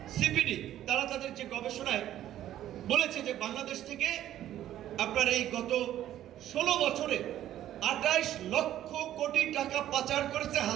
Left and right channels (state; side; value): quieter; left; 12.4 dB